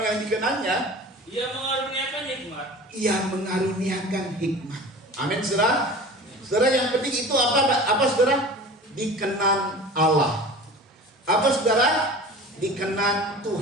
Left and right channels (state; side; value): normal; both; correlation 0.38